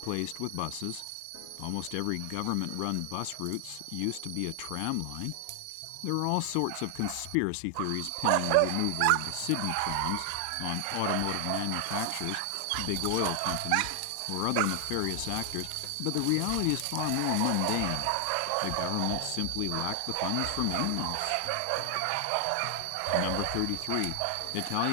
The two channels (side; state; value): both; different; correlation 0.00